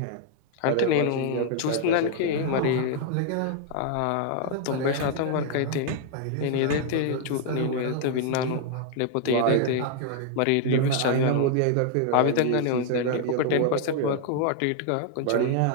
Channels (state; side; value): different; both; correlation 0.00